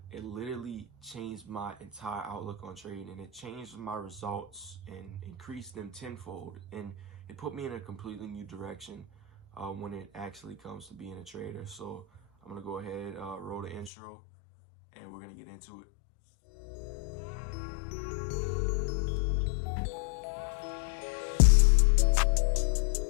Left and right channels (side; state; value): right; drops out; at 13.9 s